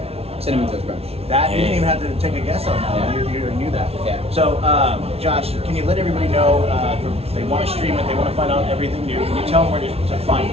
Cinnamon Toast Crunch. That you didn't even have to take a guess on that. Yeah. You knew that. Yeah. So, Josh, can you let everybody know if they want to stream it, they want to find out everything new? Can you tell them where to find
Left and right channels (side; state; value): left; late; 0.30 ms